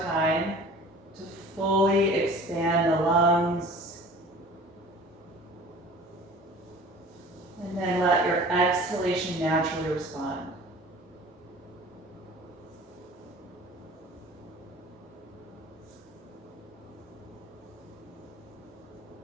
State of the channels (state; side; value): normal; both; correlation 0.44